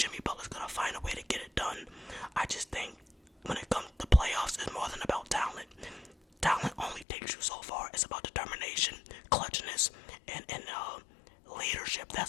Butler's going to find a way to get it done. I just think when it comes to playoffs, it's more than about talent. Talent only takes you so far. It's about determination, clutchness, and leadership.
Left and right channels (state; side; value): drops out; right; at 7.1 s